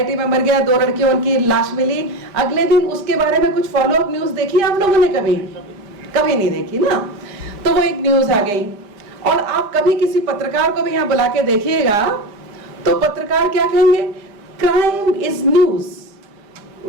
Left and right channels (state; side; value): late; left; 5.0 ms